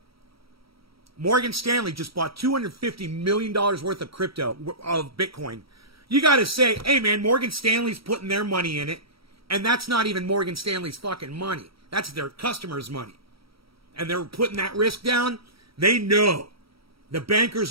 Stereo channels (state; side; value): late; left; 0.75 ms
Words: Morgan Stanley just bought $250 million worth of crypto, of Bitcoin. You got to say, hey man, Morgan Stanley's putting their money in it, and that's not even Morgan Stanley's fucking money. That's their customers' money. And they're putting that risk down. They know. The bankers